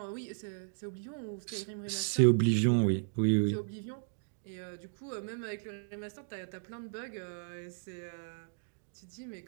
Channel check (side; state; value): left; silent; digital silence